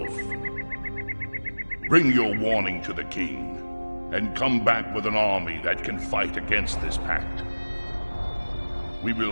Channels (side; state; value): both; inverted; correlation -1.00